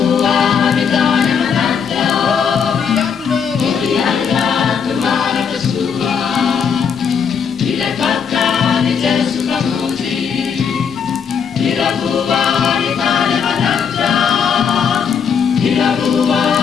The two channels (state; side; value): quieter; right; 6.8 dB